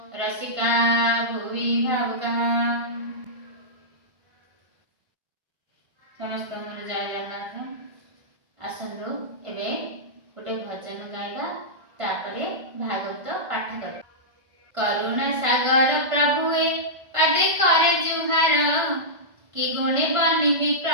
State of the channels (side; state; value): left; late; 1.5 ms